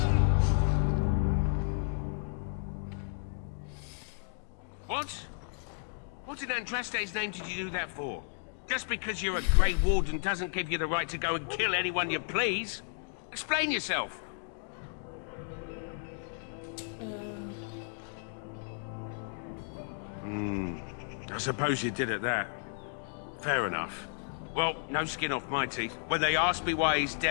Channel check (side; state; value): right; silent; digital silence